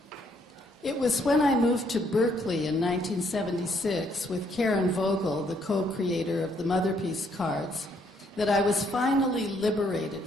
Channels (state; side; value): normal; both; correlation 0.69